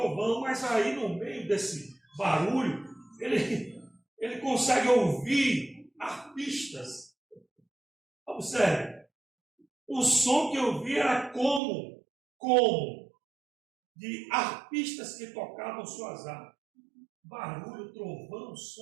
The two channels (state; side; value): drops out; left; at 11.6 s